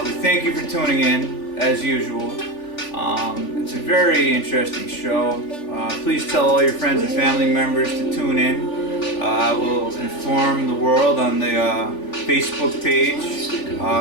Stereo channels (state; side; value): late; right; 3.4 ms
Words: We thank you for tuning in as usual. It's a very interesting show. Please tell all your friends and family members to tune in. We'll inform the world on the Facebook page